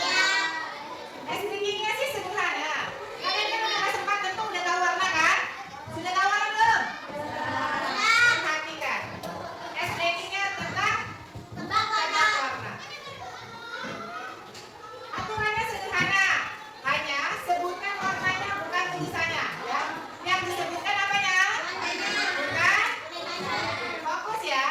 SPG-nya sih sederhana. Kalian kan udah sempat tentu udah tahu warna kan? Sudah tahu warna belum? Perhatikan. SPG-nya tentang tebak warna. Aturannya sederhana. Hanya sebutkan warnanya bukan tulisannya. Ya. Yang disebutkan apanya? Bukan? Fokus ya.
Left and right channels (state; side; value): identical; both; correlation 1.00